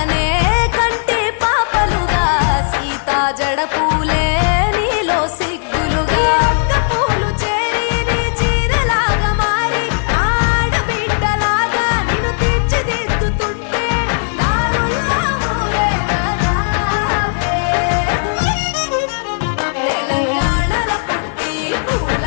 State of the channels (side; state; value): right; silent; digital silence